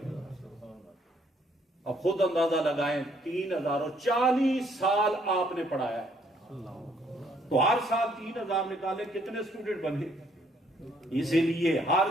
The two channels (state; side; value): normal; both; correlation 0.67